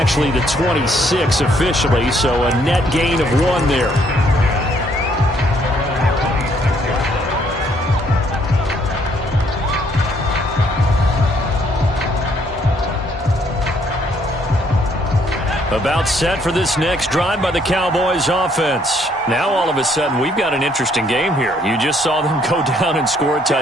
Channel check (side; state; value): both; normal; correlation 0.67